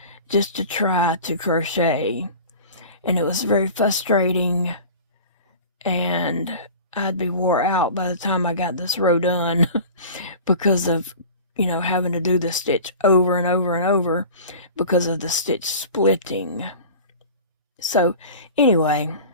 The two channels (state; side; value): inverted; both; correlation -0.38